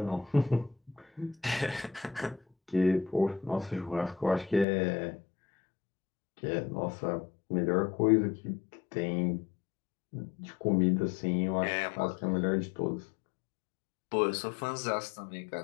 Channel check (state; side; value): drops out; right; at 4.7 s